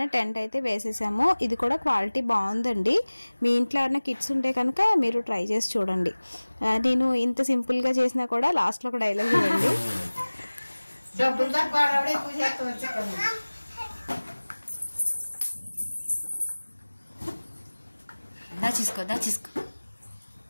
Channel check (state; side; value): inverted; both; correlation -1.00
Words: టెంట్ అయితే వేసేసాము. ఇది కూడా క్వాలిటీ బాగుందండి. మీ ఇంట్లో ఏమైనా కిడ్స్ ఉంటే కనుక మీరు ట్రై చేసి చూడండి. నేను ఇంత సింపుల్గా చేసినా కూడా లాస్ట్లో ఒక డైలాగ్ ఇవ్వండి. దాచేసుకో